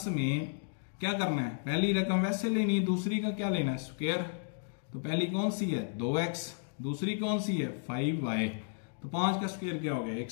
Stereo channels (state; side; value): silent; right; digital silence